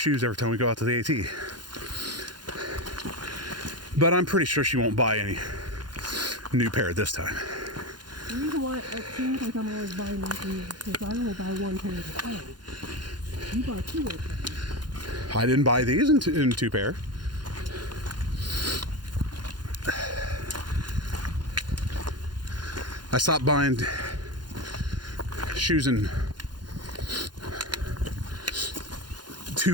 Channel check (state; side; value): late; left; 0.71 ms